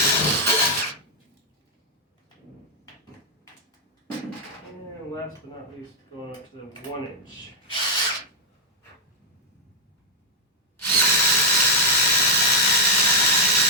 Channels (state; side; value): normal; both; correlation -0.01